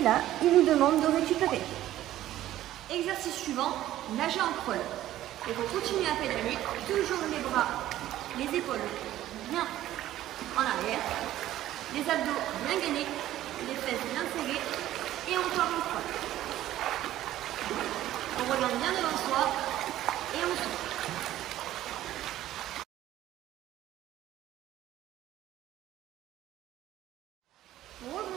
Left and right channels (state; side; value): quieter; left; 13.7 dB